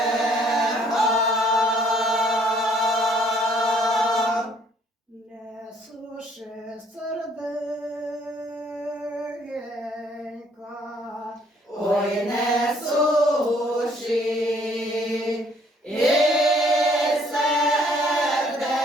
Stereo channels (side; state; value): both; normal; correlation 0.62